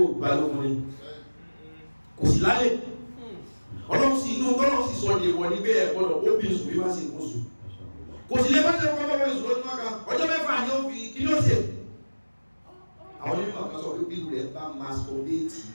balógun ni kò sí lálẹ́ ọlọ́run sí inú tọ́lọ́run sì sọ ní ìwọ̀ nígbé ẹ̀gbọ́dọ̀ ó bí ìsù bí bá sí ìkóṣù kò sí lé bá jẹ́ ọkọ̀ bọ́bọ̀ ìsù lọ́dún mọ́ka ọjọ́ 6 ni ó fi kí ní ó ṣe àwọn onímọ̀ kan sọ pé bí rẹ̀ bá masturbate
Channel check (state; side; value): inverted; both; correlation -1.00